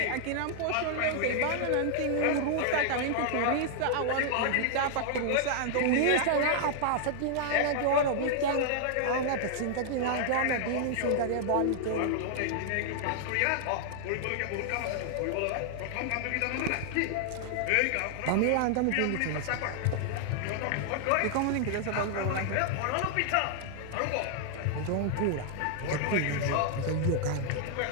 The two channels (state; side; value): different; both; correlation -0.01